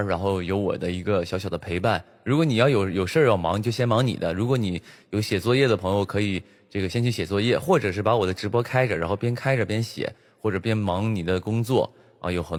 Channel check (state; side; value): identical; both; correlation 1.00